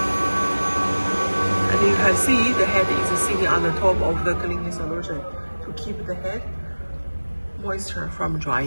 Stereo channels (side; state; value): both; inverted; correlation -1.00